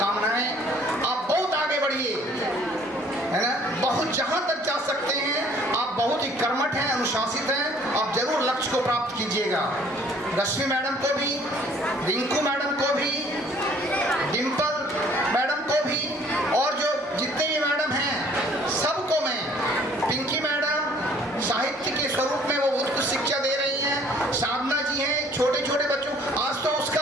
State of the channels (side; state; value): both; normal; correlation 0.57